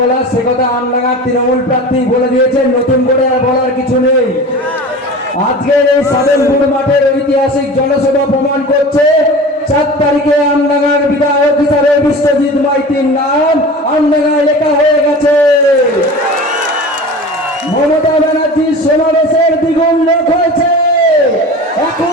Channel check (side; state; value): both; normal; correlation 0.36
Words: সে কথা আমডাঙ্গার তৃণমূল প্রার্থী বলে দিয়েছেন, নতুন করে আর বলার কিছু নেই। আজকের এই সাধনপুর মাঠের ঐতিহাসিক জনসভা প্রমাণ করছে 4 তারিখে আমডাঙ্গার বিধায়ক হিসাবে বিশ্বজিৎ মাইতির নাম আমডাঙ্গায় লেখা হয়ে গেছে। মমতা ব্যানার্জির সমাবেশের দ্বিগুণ লোক হয়েছে,